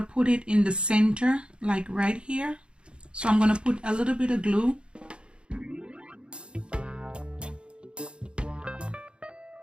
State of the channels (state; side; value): late; left; 0.055 ms